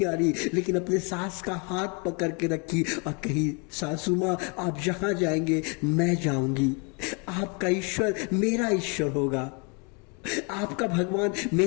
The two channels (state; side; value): quieter; right; 33.6 dB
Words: हारी, लेकिन अपने सास का हाथ पकड़ के रखी और कही, सासू माँ आप जहां जाएंगे मैं जाऊंगी, आपका ईश्वर मेरा ईश्वर होगा, आपका भगवान